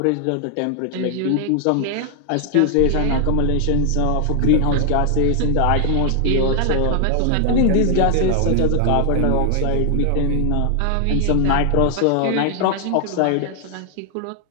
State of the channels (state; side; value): different; both; correlation 0.00